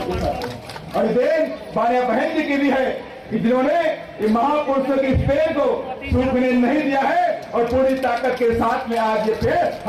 की है। और देन मान्या बहन जी की भी है कि जिन्होंने ये महापुरुषों के इस पेड़ को सूखने नहीं दिया है और पूरी ताकत के साथ में आज ये पेड़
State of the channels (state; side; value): identical; both; correlation 1.00